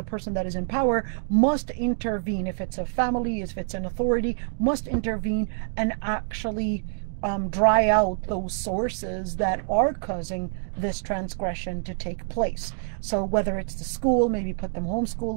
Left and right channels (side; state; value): left; silent; digital silence